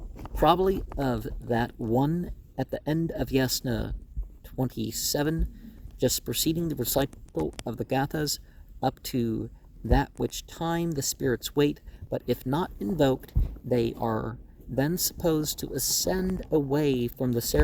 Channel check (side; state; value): both; identical; correlation 1.00